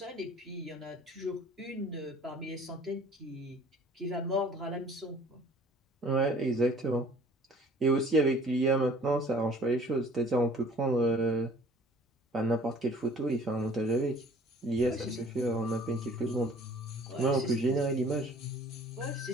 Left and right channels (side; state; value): both; normal; correlation 0.51